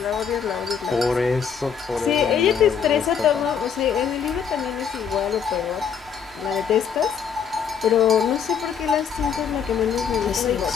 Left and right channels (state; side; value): quieter; right; 7.1 dB